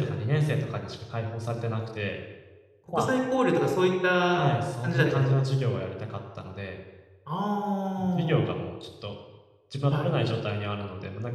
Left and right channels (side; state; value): both; identical; correlation 1.00